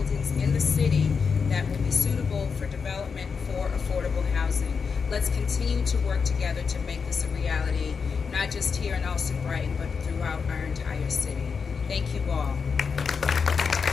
in the city that will be suitable for development for affordable housing. Let's continue to work together to make this a reality, not just here in Allston-Brighton, but throughout our entire city. Thank you all.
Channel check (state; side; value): quieter; right; 5.7 dB